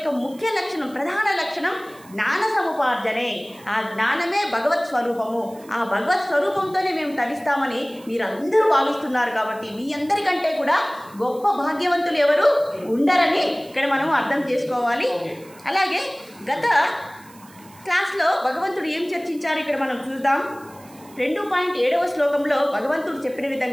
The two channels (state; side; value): noise; right; hiss, 25 dB below the sound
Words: ముఖ్య లక్షణం, ప్రధాన లక్షణం జ్ఞాన సముపార్జనే. ఆ జ్ఞానమే భగవత్ స్వరూపము. ఆ భగవత్ స్వరూపంతోనే మేము తరిస్తామని మీరు అందరూ భావిస్తున్నారు. కాబట్టి మీ అందరికంటే కూడా గొప్ప భాగ్యవంతులు ఎవరు ఉండరని ఇక్కడ మనం అర్థం చేసుకోవాలి. అలాగే గత క్లాస్లో భగవంతుడు ఏం చర్చించారు ఇక్కడ మనం చూద్దాం. 2.7వ శ్లోకంలో భగవంతుడు చెప్పిన